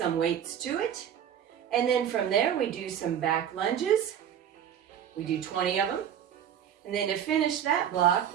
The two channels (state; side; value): quieter; left; 9.4 dB